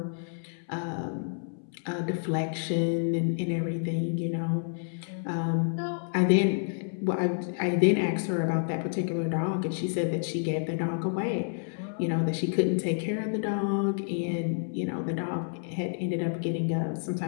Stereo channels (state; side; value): silent; right; 58 dB below the other